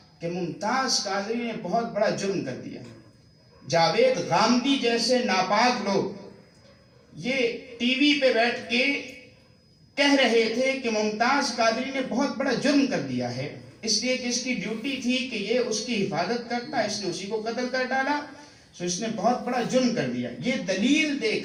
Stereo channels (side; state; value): both; identical; correlation 1.00